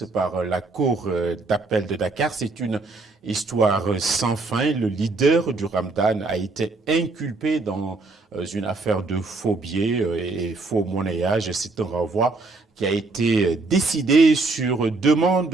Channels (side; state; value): left; quieter; 3.5 dB